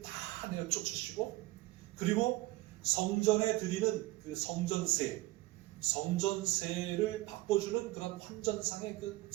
다 내어 쫓으시고 그리고 성전에 드리는 그 성전세를 바꿔주는 그런 환전상의 그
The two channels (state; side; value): quieter; left; 19.1 dB